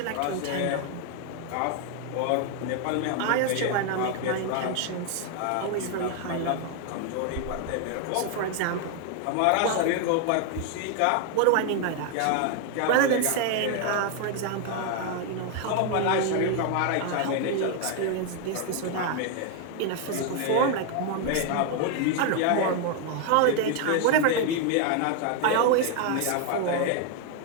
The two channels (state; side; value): different; both; correlation 0.01